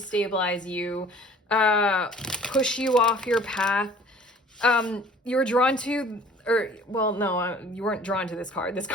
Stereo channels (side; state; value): both; normal; correlation 0.50